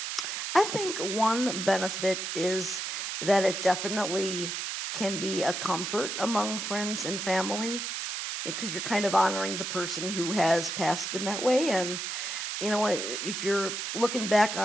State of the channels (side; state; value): right; noise; hiss, 4 dB below the sound